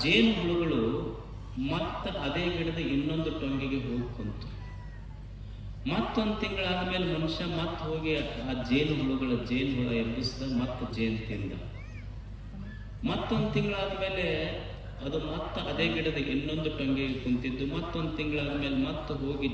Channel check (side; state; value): both; identical; correlation 1.00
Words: ಜೇನು ಹುಳುಗಳು ಮತ್ತೆ ಅದೇ ಗಿಡದ ಇನ್ನೊಂದು ಟೊಂಗಿಗೆ ಹೋಗಿ ಕುಂತು. ಮತ್ತೊಂದು ತಿಂಗಳಾದ್ಮೇಲೆ ಮನುಷ್ಯ ಮತ್ತೆ ಹೋಗಿ ಆ ಜೇನು ಹುಳ ಎಬ್ಬಿಸಿದ, ಮತ್ತೆ ಜೇನು ತಿಂದ. ಮತ್ತೊಂದು ತಿಂಗಳಾದ್ಮೇಲೆ ಅದು ಮತ್ತೆ ಅದೇ ಗಿಡದ ಇನ್ನೊಂದು ಟೊಂಗಿಗೆ ಕುಂತಿದ್ದು. ಮತ್ತೊಂದು ತಿಂಗಳಾದ್ಮೇಲೆ ಮತ್ತೆ ಹೋಗಿ